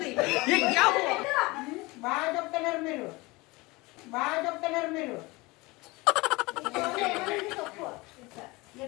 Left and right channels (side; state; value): right; quieter; 23.3 dB